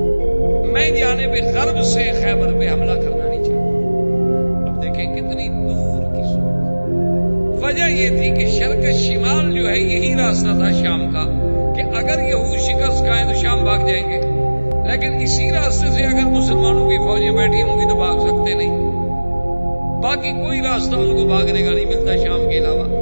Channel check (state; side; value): inverted; both; correlation -1.00